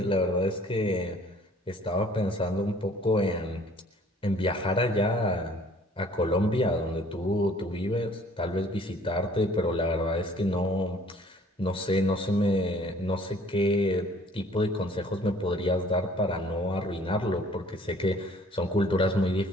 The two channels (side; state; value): both; normal; correlation 0.55